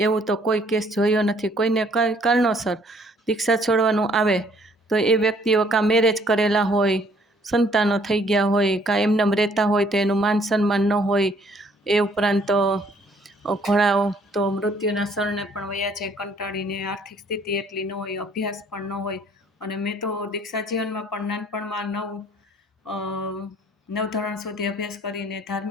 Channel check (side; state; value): both; normal; correlation 0.62